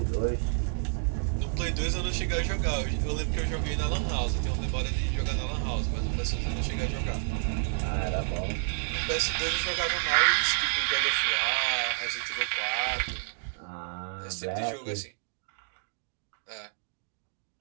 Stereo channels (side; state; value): left; silent; digital silence